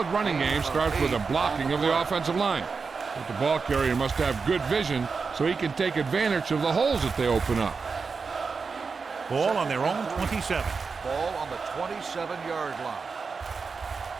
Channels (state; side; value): quieter; left; 4.9 dB